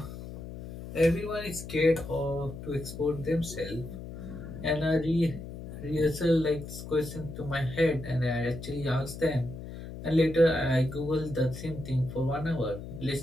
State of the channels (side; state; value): left; noise; hum, 11 dB below the sound